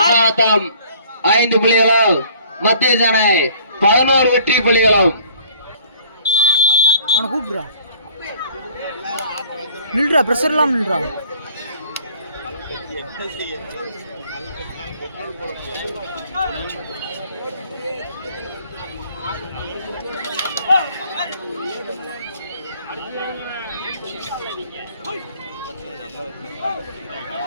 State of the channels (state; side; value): inverted; both; correlation -0.55